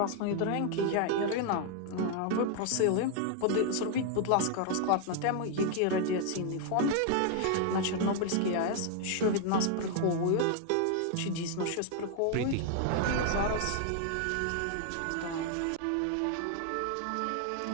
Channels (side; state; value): both; different; correlation 0.00